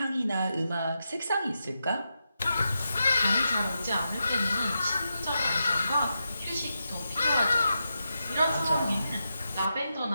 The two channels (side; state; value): both; inverted; correlation -0.87